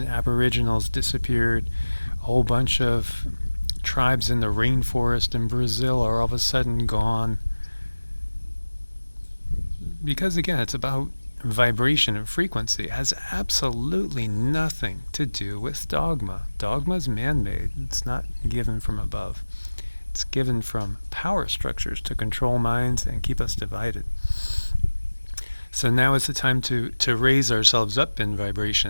Aboriginals disappeared, a whole bunch of tribes in the rainforest in Brazil are all of a sudden gone? Because again, it's about vibration and frequency. It has absolutely nothing to do with dogma. Dogma's man-made. It's not given from above. It's given from power structures to control minds and keep us divided. So now is the time to raise ourselves up in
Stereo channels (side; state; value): both; inverted; correlation -1.00